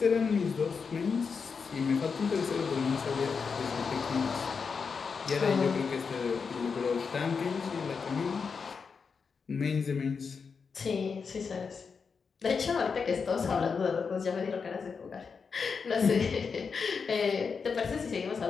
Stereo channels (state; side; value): quieter; right; 5.5 dB